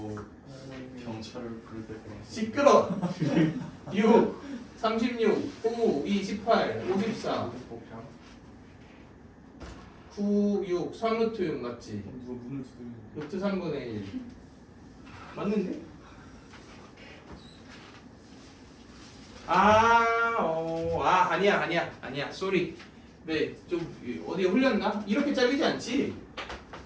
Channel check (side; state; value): both; identical; correlation 1.00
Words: 경찰을 부를 때 시끄러! 6, 36, 9, 2, 18, 54 9, 6, 3루트 6 맞지? 누가 문을 두드리는 루트 3분의 1 맞는데? 아니야 쏘리. 네, 좀 어디에 흘렸나? 이렇게 잘리지 않지?